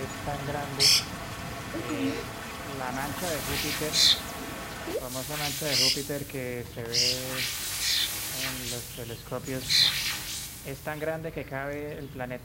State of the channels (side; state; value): both; identical; correlation 1.00